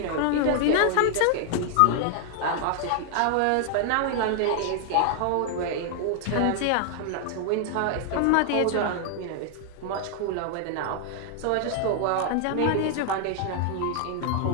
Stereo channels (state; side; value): different; both; correlation 0.00